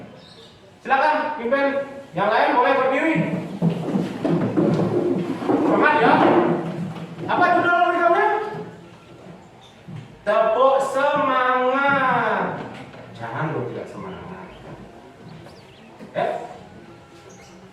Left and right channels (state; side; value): identical; both; correlation 1.00